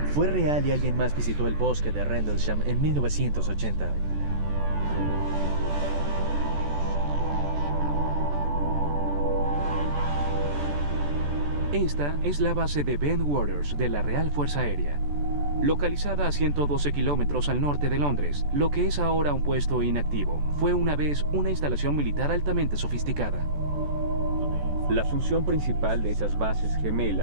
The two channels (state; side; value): late; left; 14 ms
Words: Fue real y alguien más visitó el bosque de Rendlesham en 1980. Esta es la base de Bentwaters de la Real Fuerza Aérea, localizada a 112 kilómetros al norte de Londres. Lo que es ahora un puesto inactivo fue una vez una instalación militar altamente sofisticada. La función principal de esas bases